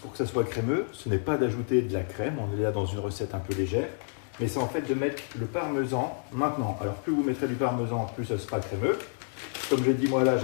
que ça soit crémeux, ce n'est pas d'ajouter de la crème, on est là dans une recette un peu légère, mais c'est en fait de mettre le parmesan maintenant. Alors plus vous mettrez du parmesan, plus ça sera crémeux. Comme j'ai dit, moi là,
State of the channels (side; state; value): right; silent; digital silence